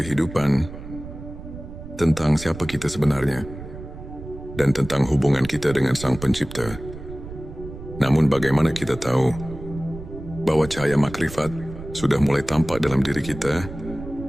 tentang siapa kita sebenarnya, dan tentang hubungan kita dengan Sang Pencipta. Namun bagaimana kita tahu bahwa cahaya makrifat sudah mulai tampak dalam diri kita?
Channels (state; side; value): noise; right; rumble, 12 dB below the sound